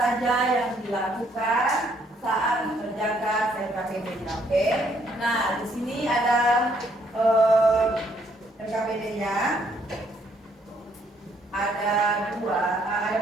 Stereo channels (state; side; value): normal; both; correlation 0.69